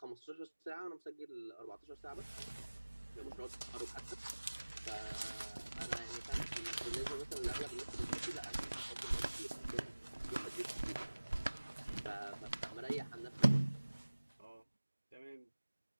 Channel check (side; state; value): both; inverted; correlation -1.00